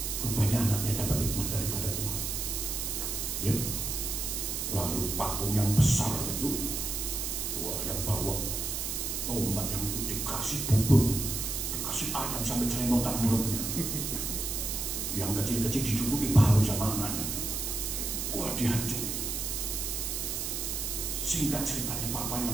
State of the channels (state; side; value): noise; right; hiss, 2 dB below the sound